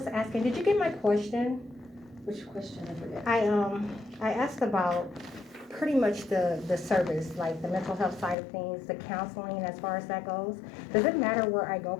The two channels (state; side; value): drops out; right; at 8.3 s